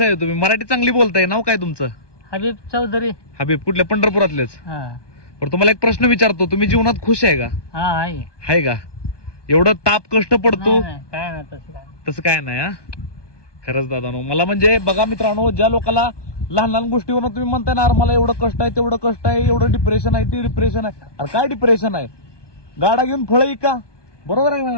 आहे तुम्ही? मराठी चांगली बोलताय. नाव काय तुमचं? हबीब चौधरी. हबीब, कुठल्या? पंढरपुरातलेच. हा पण तुम्हाला एक प्रश्न विचारतो, तुम्ही जीवनात खुश आहे का? हा आहे. आहे का? एवढं ताप कष्ट पडतो नाही, काय नाही तसं काय. तसं काय नाही. हा, खरंच दादानो, मला म्हणजे बघा मित्रांनो, ज्या लोकांना लहान लहान गोष्टीवर तुम्ही म्हणताय ना, मला एवढं कष्ट आहे, तेवढं कष्ट आहे, एवढं डिप्रेशन आहे, ते डिप्रेशन आहे. अरे काय डिप्रेशन आहे? गाडा घेऊन फळ का? बरोबर आहे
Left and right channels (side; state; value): right; late; 1.2 ms